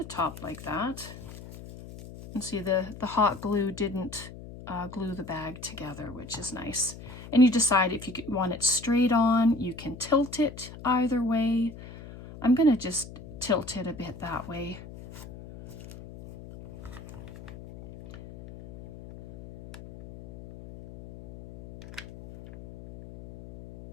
top like that. And see, the hot glue didn't glue the bag together, which is nice. And you decide if you want it straight on, you can tilt it either way. I'm going to just tilt it a bit that way.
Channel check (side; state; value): left; noise; hum, 14 dB below the sound